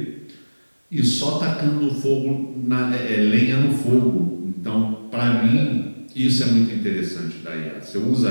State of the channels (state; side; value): inverted; both; correlation -1.00